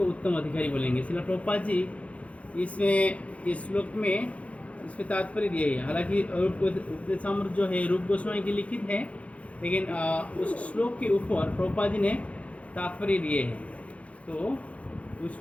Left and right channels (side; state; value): right; late; 0.064 ms